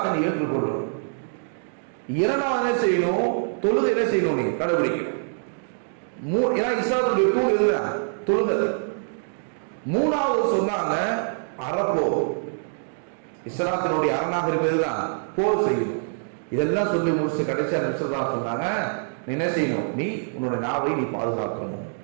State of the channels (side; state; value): left; silent; digital silence